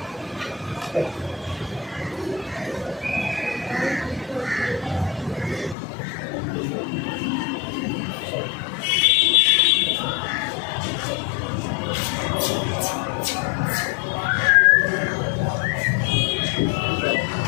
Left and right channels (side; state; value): right; drops out; at 5.8 s